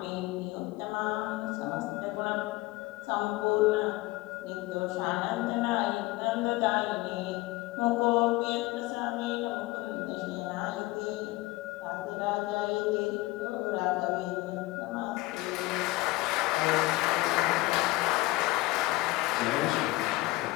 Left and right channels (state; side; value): quieter; right; 20.3 dB